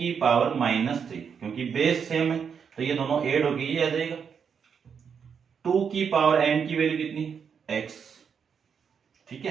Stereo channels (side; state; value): left; quieter; 6.8 dB